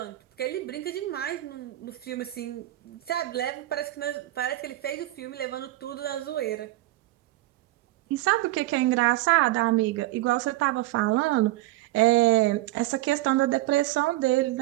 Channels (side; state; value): left; quieter; 17.0 dB